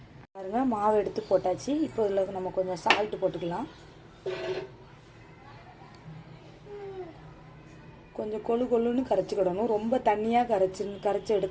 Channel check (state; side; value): identical; both; correlation 1.00